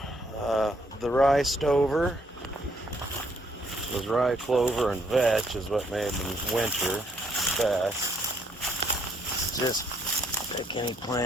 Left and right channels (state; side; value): normal; both; correlation 0.68